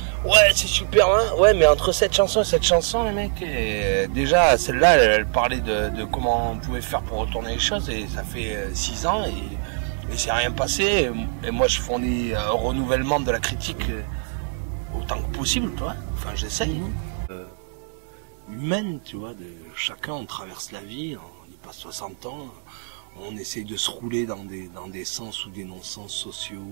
Ouais, c'est super, hein. Ouais, mais entre cette chanson et cette chanson, les mecs, déjà, celle-là, elle parlait de comment on pouvait faire pour retourner les choses et ça fait 6 ans et c'est rien passé. Et moi, je fournis un renouvellement de la critique autant que possible, toi. Enfin, j'essaye. Humaine, tu vois, chacun, on traverse la vie, on y passe 60 ans, on essaye de se rouler dans des sens ou des non-sens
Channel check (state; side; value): silent; left; digital silence